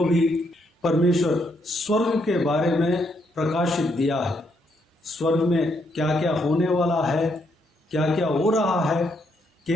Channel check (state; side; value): normal; both; correlation 0.75